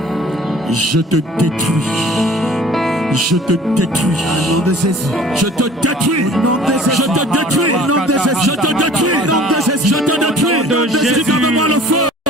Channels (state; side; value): normal; both; correlation 0.49